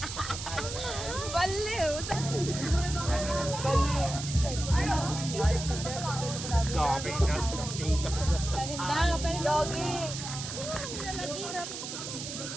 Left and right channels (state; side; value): noise; right; hiss, 7 dB below the sound